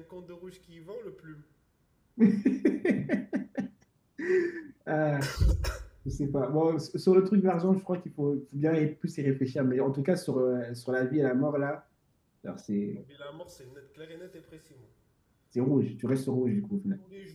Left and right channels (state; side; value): identical; both; correlation 1.00